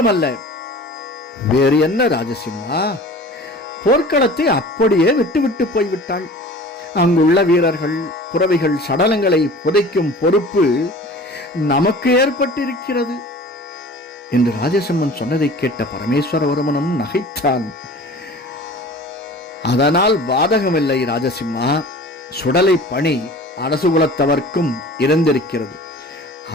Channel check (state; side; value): normal; both; correlation 0.42